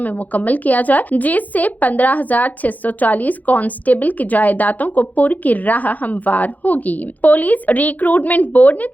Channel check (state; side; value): late; right; 0.080 ms